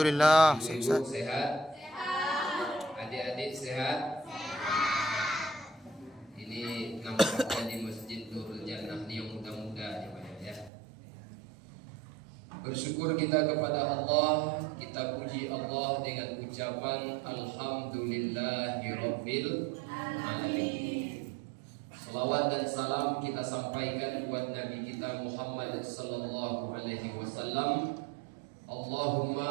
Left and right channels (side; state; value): left; drops out; at 10.7 s